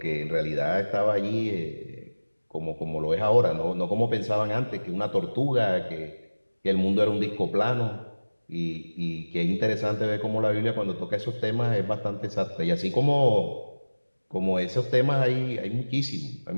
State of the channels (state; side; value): inverted; both; correlation -1.00